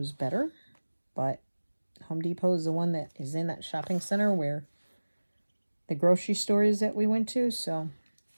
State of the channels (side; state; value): both; inverted; correlation -1.00